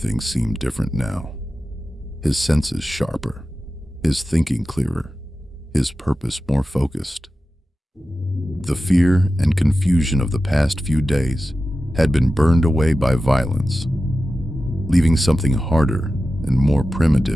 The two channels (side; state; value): both; normal; correlation 0.94